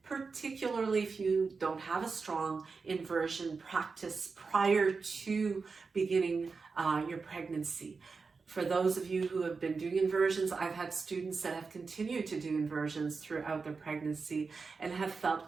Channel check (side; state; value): left; quieter; 4.7 dB